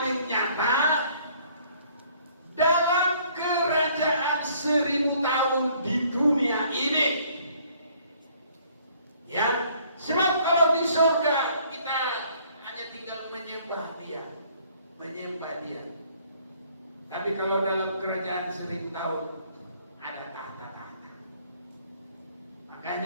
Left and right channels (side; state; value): both; inverted; correlation -0.60